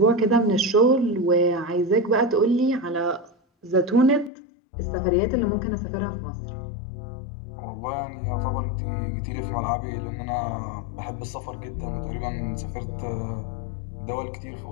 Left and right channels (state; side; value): drops out; right; at 4.3 s